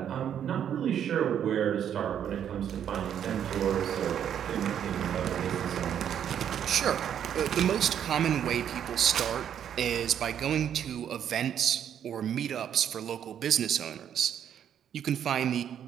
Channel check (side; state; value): left; quieter; 9.3 dB